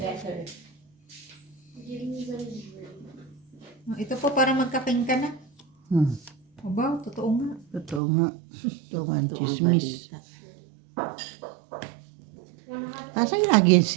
Giving you the Ito po para magkaking ka na. Aba, totoo nga. Totoo nga. Ito nga ang Ito ang chismis. balita. Asan lagi yung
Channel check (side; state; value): left; drops out; at 8.0 s